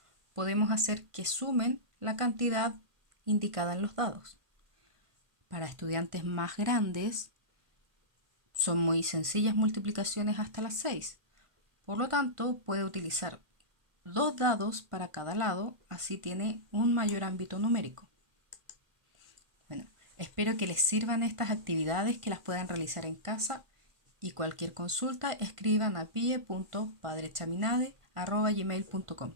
podemos hacer que sumen la cantidad indicada en los dados. Para estudiantes más grandes, son muy sencillas multiplicaciones hasta las 6. Por lo tanto, puede utilizar 2 dados para cada lado, así tiene un mayor ámbito numérico. Bueno, espero que les sirvan estas actividades, que las puedan realizar en casa, y cualquier consulta escriban a pie.padrechaminade@gmail.com.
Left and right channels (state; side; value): late; left; 1.4 ms